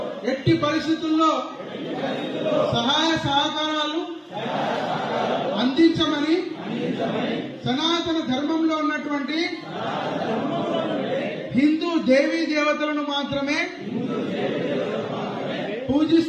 ఎట్టి పరిస్థితుల్లో సహాయ సహకారాలు అందించమని, సనాతన ధర్మంలో ఉన్నటువంటి హిందూ దేవీ దేవతలను మాత్రమే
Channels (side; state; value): both; identical; correlation 1.00